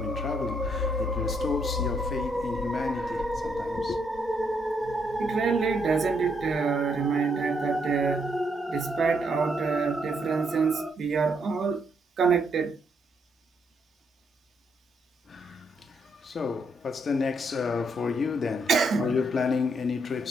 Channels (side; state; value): both; normal; correlation 0.75